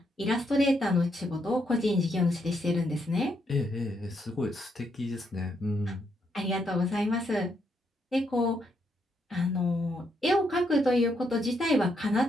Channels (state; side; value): normal; both; correlation 0.77